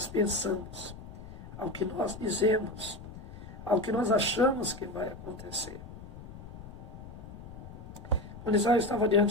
pensamos, ao que nós dizemos, ao que nós achamos que vai acontecer. Quando Israel estava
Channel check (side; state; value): left; noise; rumble, 13 dB below the sound